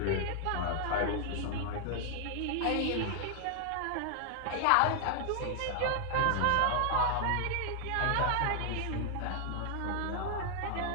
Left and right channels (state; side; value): different; both; correlation 0.00